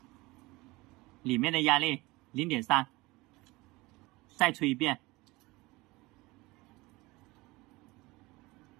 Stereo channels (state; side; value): quieter; left; 22.0 dB